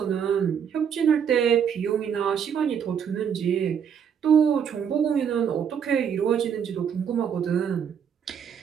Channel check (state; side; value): quieter; left; 7.8 dB